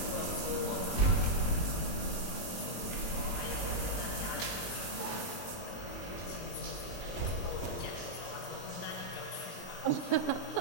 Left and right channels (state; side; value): late; right; 21 ms